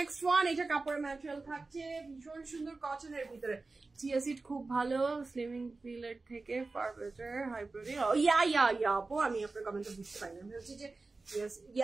one. এটা কাপড়ের ম্যাটেরিয়াল থাকছে ভীষণ সুন্দর কটনের ভিতরে। চিয়া সিড খুব ভালো, স্লিমিং পিলের থেকে ফার বেটার, হাই প্রোটিন। ইয়া আপু, আমি আপনার কমেন্টটা বুঝতে পারি না। আমি হচ্ছে যে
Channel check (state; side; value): quieter; left; 3.6 dB